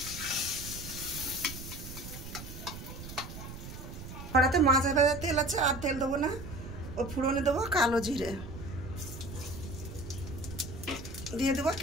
কড়াতে মাছ ভাজার তেল আছে, আর তেল দেবো না। ও ফুড়নে দেবো কালো জিরে, দিয়ে দেবো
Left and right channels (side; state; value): right; noise; rumble, 11 dB below the sound